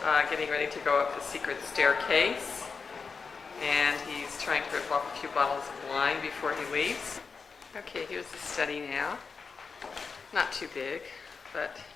getting ready to go up the secret staircase. And he's trying to rip off a few bottles of wine before he leaves. Okay, here's the study now. Not too big, but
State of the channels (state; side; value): quieter; right; 5.1 dB